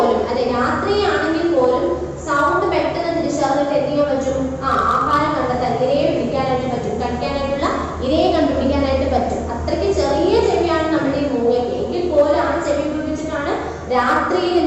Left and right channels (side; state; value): both; identical; correlation 1.00